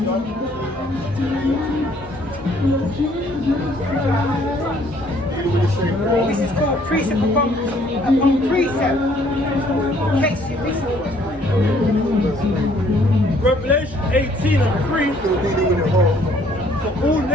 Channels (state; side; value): normal; both; correlation 0.62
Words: This is called precept upon precept. In case you missed it. Revelation 18 and 3. For all